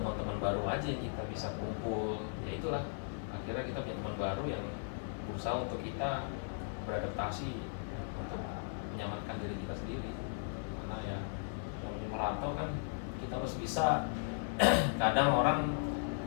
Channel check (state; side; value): silent; right; 53 dB below the other